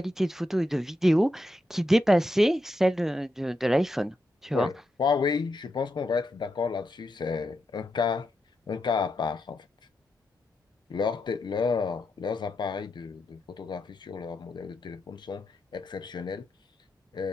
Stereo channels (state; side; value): normal; both; correlation 0.85